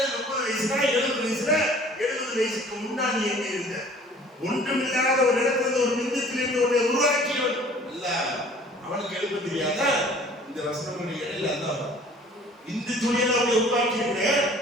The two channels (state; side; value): normal; both; correlation 0.51